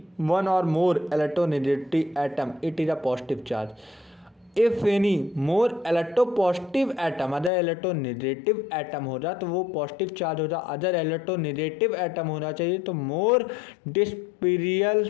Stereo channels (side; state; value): right; drops out; at 7.5 s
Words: one or more electronegative atom it is a positive charge, if any more electropositive atom other electronegative atom हो जाए तो वो पॉजिटिव चार्ज हो जाए, अदर electronegative atom होना चाहिए तो मोर डिस्पेरियल